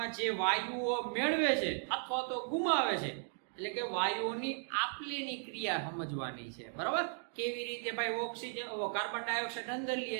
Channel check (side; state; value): left; silent; 54 dB below the other